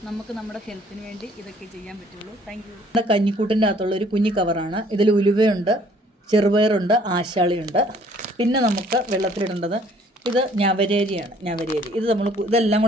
നമുക്ക് നമ്മുടെ ഹെൽത്തിന് വേണ്ടി ഇതൊക്കെ ചെയ്യാൻ പറ്റുള്ളൂ. Thank you. നമ്മുടെ കഞ്ഞിക്കൂട്ടിൻ്റെ അകത്തുള്ള ഒരു കുഞ്ഞി കവറാണ്. ഇതിൽ ഉലുവയുണ്ട്, ചെറുപയറുണ്ട്, ആശാളിയുണ്ട്. പിന്നെ നമുക്ക് വെള്ളത്തിലിടേണ്ടത് ഇത് ഞവരേരിയാണ്. ഞവരേരി ഇതെല്ലാം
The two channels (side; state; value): both; normal; correlation 0.59